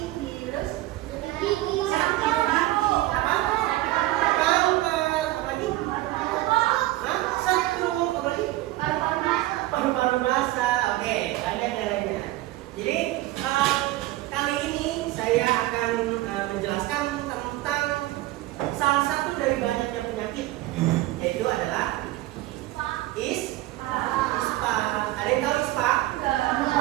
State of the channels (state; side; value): quieter; left; 17.0 dB